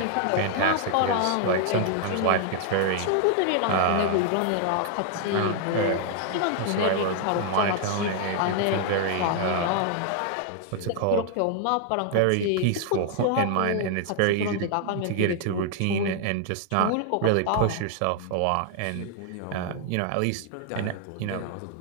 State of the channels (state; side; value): different; both; correlation 0.00